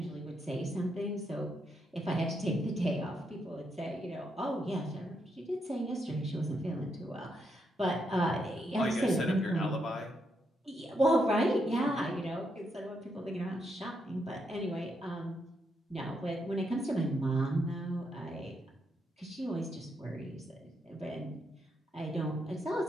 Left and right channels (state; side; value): normal; both; correlation 0.79